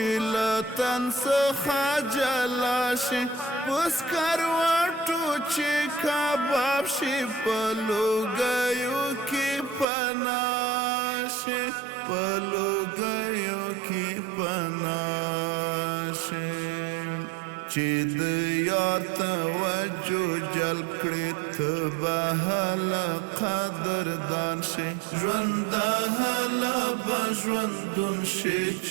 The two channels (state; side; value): drops out; left; at 9.9 s